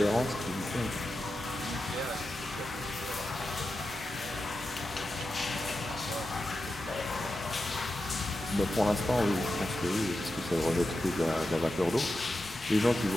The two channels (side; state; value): both; normal; correlation 0.90